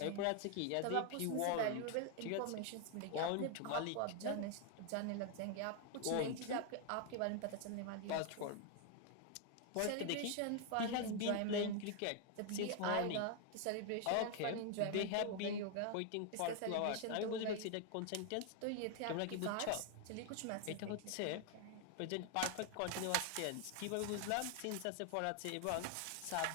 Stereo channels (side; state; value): both; different; correlation 0.00